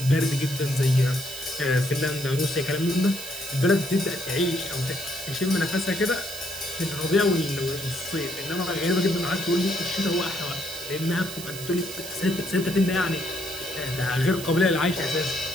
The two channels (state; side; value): noise; right; hiss, 10 dB below the sound